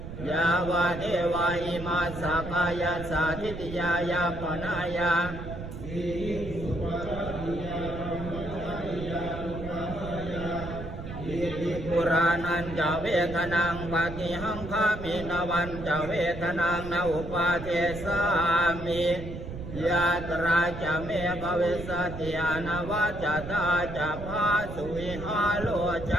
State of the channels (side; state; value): right; noise; rumble, 9 dB below the sound